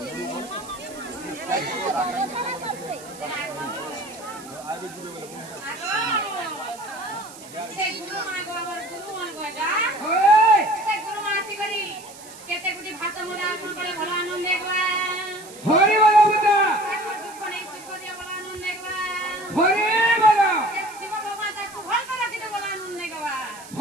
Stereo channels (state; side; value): noise; right; hiss, 18 dB below the sound